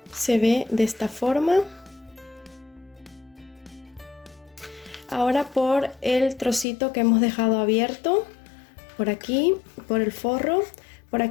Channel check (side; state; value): right; drops out; at 6.7 s